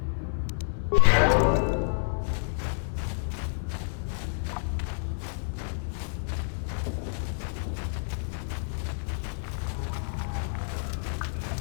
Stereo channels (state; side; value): silent; right; 58 dB below the other